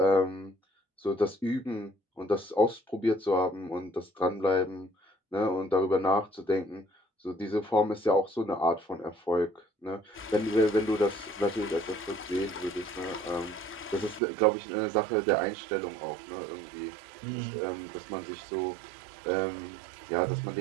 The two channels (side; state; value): left; drops out; at 14.2 s